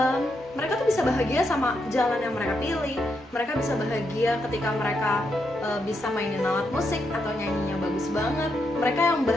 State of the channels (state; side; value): normal; both; correlation 0.81